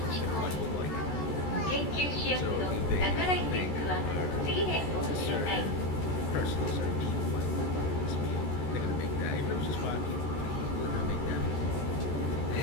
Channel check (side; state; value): right; late; 14 ms